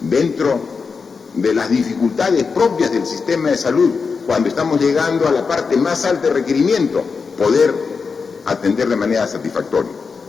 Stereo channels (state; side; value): quieter; right; 5.1 dB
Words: de las dificultades propias del sistema de salud, cuando estamos llegando a la parte más alta de requerimiento, poder atender de manera satisfactoria.